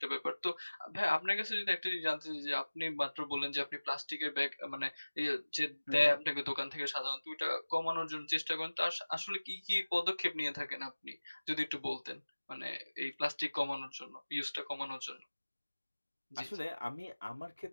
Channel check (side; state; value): both; inverted; correlation -1.00